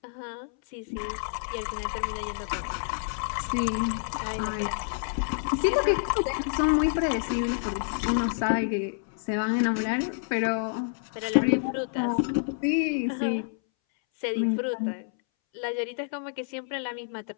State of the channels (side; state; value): right; silent; 59 dB below the other